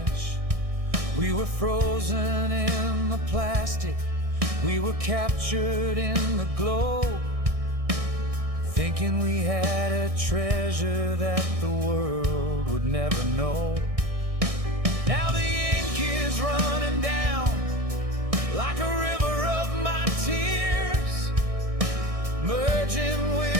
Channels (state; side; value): late; left; 1.6 ms